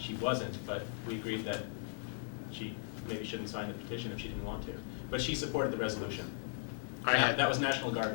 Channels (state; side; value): silent; right; 53 dB below the other